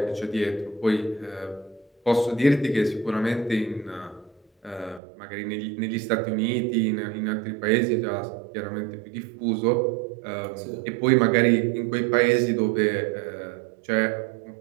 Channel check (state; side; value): drops out; left; at 5.0 s